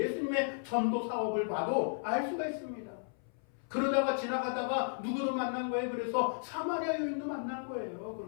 전도 사업을 봐도 알 수가 있습니다. 그러다가 지나가다가 누구를 만난 거예요? 그래서 사마리아 여인도 만난 거예요.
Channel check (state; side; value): silent; right; 55 dB below the other